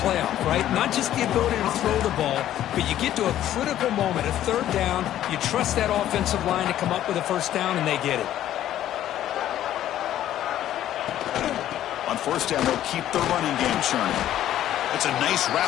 right? Not just the ability to throw the ball, but you get to a critical moment, a third down, you trust that offensive line to come up with a first down, and they get it. On first down, they'll keep the running game churning. It's a nice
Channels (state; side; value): quieter; right; 12.2 dB